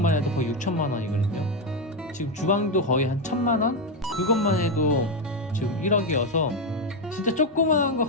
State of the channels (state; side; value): normal; both; correlation 0.07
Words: 해도 거의 6천만 원이거든요. 지금 주방도 거의 한 1,000만 원? 그것만 해도 지금 1억이어서 진짜 조그만한 거